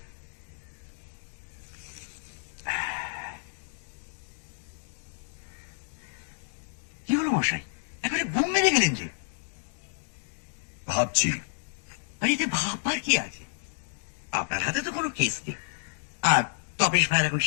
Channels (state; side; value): silent; right; digital silence